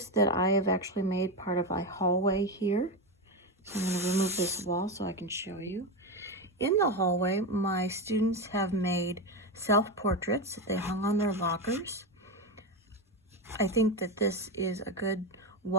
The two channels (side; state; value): both; normal; correlation 0.14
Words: that I have actually made part of my hallway here. So I'm going to remove this wall so I can show you. In the hallway, my students have made self-portraits that they hung on their lockers. I think that this is a good